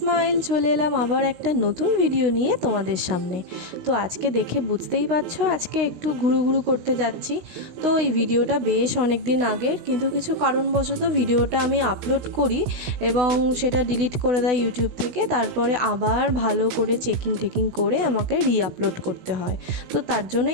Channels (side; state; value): left; late; 16 ms